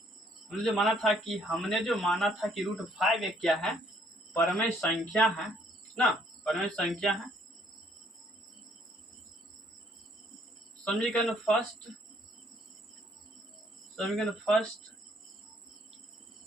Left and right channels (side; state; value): both; normal; correlation 0.65